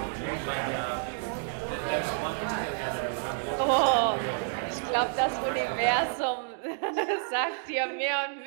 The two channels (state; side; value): silent; left; digital silence